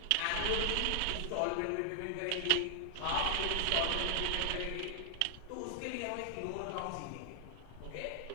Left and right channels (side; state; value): both; different; correlation 0.00